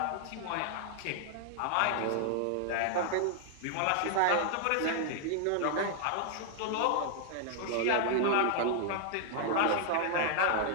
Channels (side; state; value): both; different; correlation 0.00